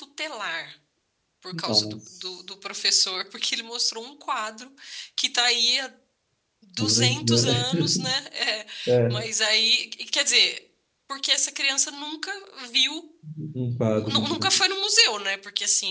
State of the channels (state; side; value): identical; both; correlation 1.00